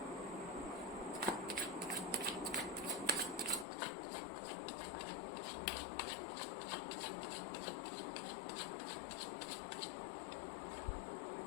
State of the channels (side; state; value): right; drops out; at 3.7 s